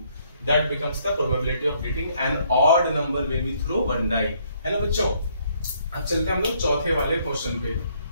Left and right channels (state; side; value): inverted; both; correlation -0.68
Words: that becomes the probability of getting an odd number when we throw 1 die, है ना बच्चों। अब चलते हैं हम लोग चौथे वाले क्वेश्चन पे।